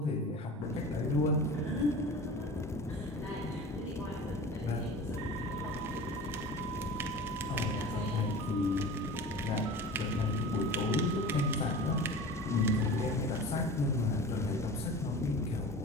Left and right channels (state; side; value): normal; both; correlation 0.36